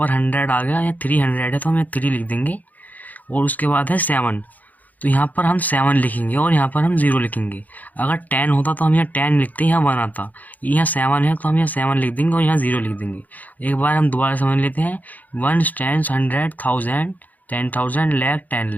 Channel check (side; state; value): right; late; 0.080 ms